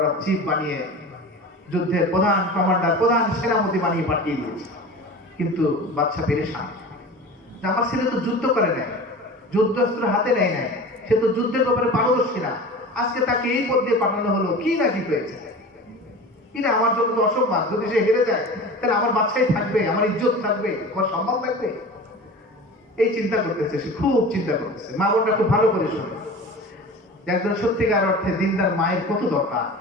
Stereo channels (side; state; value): both; normal; correlation 0.36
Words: অফ চিফ বানিয়ে যুদ্ধের প্রধান কমান্ডার, প্রধান সেনাপতি বানিয়ে পাঠিয়ে দিয়েছে। কিন্তু বাদশা পেরেশান, আমার ছেলে তো যুদ্ধ করে নাই, যুদ্ধাস্ত্র হাতে নেয় নাই, সে তো যুদ্ধের ব্যাপারে পারদর্শী না, আজকে তাকে এই পদ দিয়ে পাঠানো হলো, কি না কি হয়েছে? কিনা আমার জন্য তো অসম্মান। যদি সে হেরে যায় তাহলে আমার বাচ্চাই থাকবে, আমার ইজ্জত থাকবে, আমার সম্মান থাকবে। এই চিন্তা করতেছে, সে খুব চিন্তা করতেছে। মা বোনটা খুব ভালো করে শোনে, একজন সত্যিকার অর্থে দিনদার মায়ের কত দরকার,